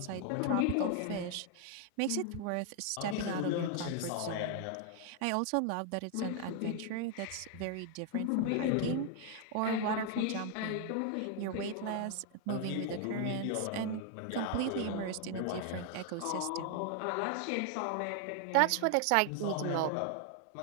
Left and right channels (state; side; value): different; both; correlation 0.00